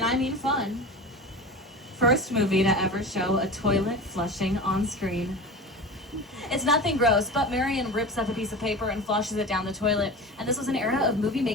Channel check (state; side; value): normal; both; correlation 0.31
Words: I mean fun. First movie to ever show a toilet flushing on screen. It's nothing gross, but Marion rips up a piece of paper and flushes it down the toilet. And this was an era of movie